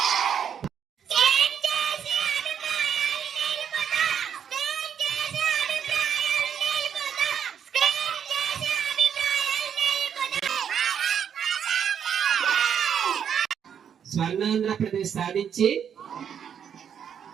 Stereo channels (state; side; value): quieter; left; 8.2 dB